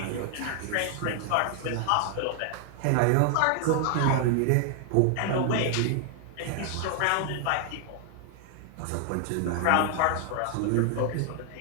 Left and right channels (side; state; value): both; different; correlation 0.00